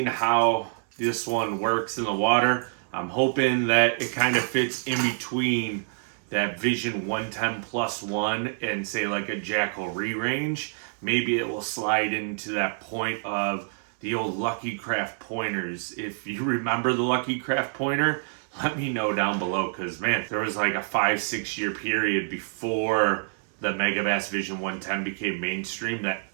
how this one works in the water. I'm hoping that it kind of fits in between that Vision 110 plus one and say like a Jackal re-range. Maybe it will slide into that point of the old Lucky Craft pointers. If you remember the Lucky Craft pointer, let me know down below, because man, there was like a 5-6 year period before the Megabass Vision 110 became mainstream that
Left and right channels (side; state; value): left; silent; 58 dB below the other